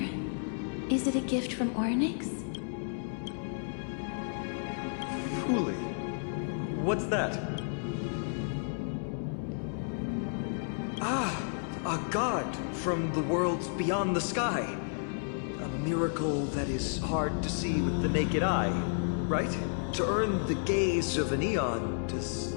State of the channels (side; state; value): right; silent; 57 dB below the other